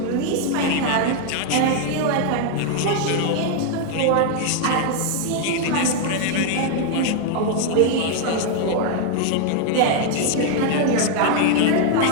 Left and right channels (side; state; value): both; different; correlation 0.00